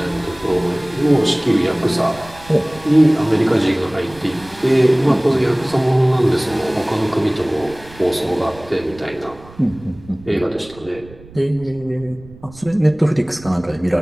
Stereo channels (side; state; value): right; noise; rumble, 21 dB below the sound